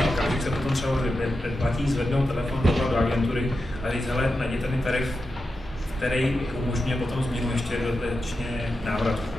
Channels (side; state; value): both; normal; correlation 0.89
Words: okamžik se potom třeba předplatí, zvednou telefon do agentury a říct, hele, najděte mi tarif, který umožňuje potom změnu ještě dodatečně návrat,